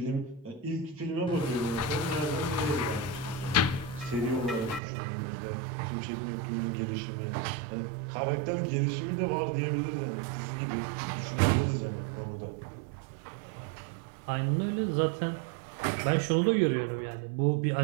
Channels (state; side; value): drops out; left; at 4.8 s